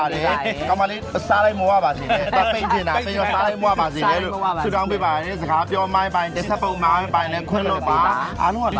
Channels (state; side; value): identical; both; correlation 1.00